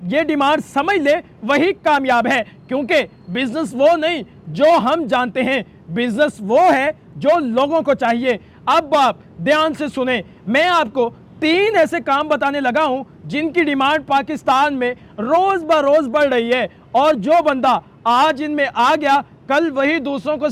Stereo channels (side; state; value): both; identical; correlation 1.00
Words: ये डिमांड समझ ले वही कामयाब है, क्योंकि बिजनेस वो नहीं जो हम जानते हैं, बिजनेस वो है जो लोगों को चाहिए। अब आप ध्यान से सुने, मैं आपको 3 ऐसे काम बताने लगा हूं जिनकी डिमांड पाकिस्तान में रोज ब रोज बढ़ रही है और जो बंदा आज इनमें आ गया कल वही दूसरों को